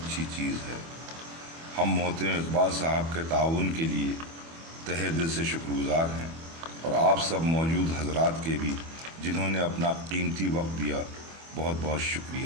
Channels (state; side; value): late; left; 24 ms